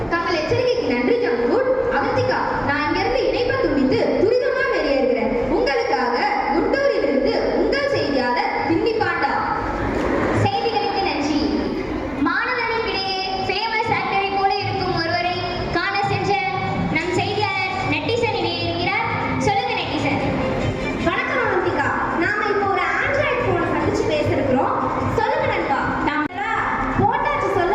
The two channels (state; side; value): identical; both; correlation 1.00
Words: தங்கள் எச்சரிக்கைக்கு நன்றி ஜங்குட். அவந்திகா, நான் இங்கிருந்து இணைப்பை துண்டித்து துரிதமா வெளியேறுகிறேன். உங்களுக்காக குண்டூரிலிருந்து உங்கள் செய்தியாளர் பின்னி பாண்டா. செய்திகளுக்கு நன்றி. மாணவர்களுக்கிடையே ஃபேமஸ் ஆக்டரை போல இருக்கும் ஒருவரை காண சென்ற நம் செய்தியாளர் நெட்டிசன் இணையிருக்கிறார். சொல்லுங்க நெட்டிசன். வணக்கம் அவந்திகா. நாம இப்போ ஒரு ஆண்ட்ராய்டு போனை சந்திச்சு பேசிருக்கிறோம். சொல்லுங்க நண்பா. நம்ம போட்டாச்சு